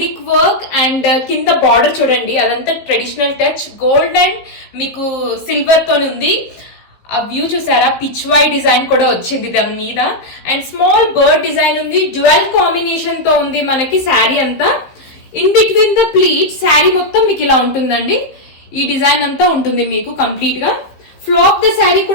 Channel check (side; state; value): right; late; 16 ms